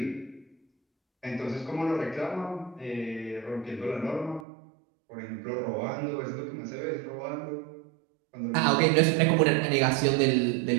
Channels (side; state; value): left; drops out; at 4.5 s